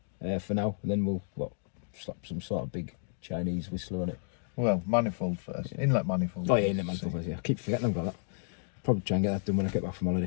for now. And then we'll slap some sort of big Chinese whistler on it. Well, manifold first. Yeah. Inlet manifold. Oh yeah, inlet manifold first. Yeah, I keep forgetting I've got that. Probably try and get that done when I get back from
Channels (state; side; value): silent; right; digital silence